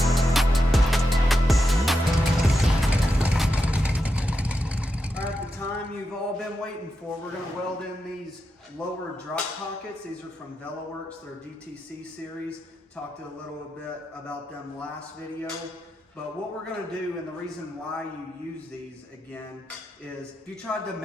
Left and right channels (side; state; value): both; normal; correlation 0.87